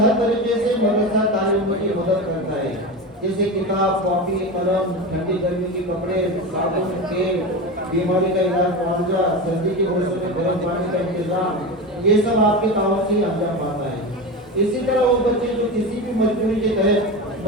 हर तरीके से मदरसा तालीम की मदद करता है, जैसे किताब, कॉपी, कलम, ठंडी गर्मी के कपड़े, साबुन, तेल, बीमारी का इलाज, मुआवजा, सर्दी के मौसम में गर्म पानी का इंतजाम, ये सब आपके ताउन से अंजाम पाता है। इसी तरह वो बच्चे जो किसी भी मजबूरी के तहत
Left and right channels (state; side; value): normal; both; correlation 0.23